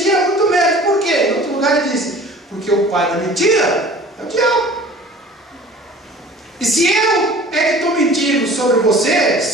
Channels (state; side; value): normal; both; correlation 0.45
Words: é muito menos. Por quê? Em outro lugar ele disse: porque o pai da mentira é o diabo. E se eu é que estou mentindo sobre você,